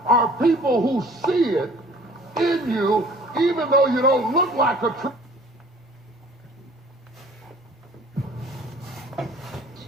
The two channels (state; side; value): normal; both; correlation 0.51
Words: are people who see it in you, even though you don't look like a tree.